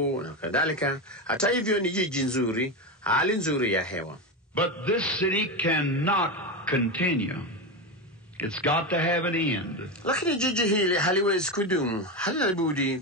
na kadhalika, hata hivyo ni jiji nzuri, hali nzuri ya hewa. But this city cannot continue. It's got to have an end. Lakini jiji hili haliwezi kudumu, halina budi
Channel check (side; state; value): both; normal; correlation 0.15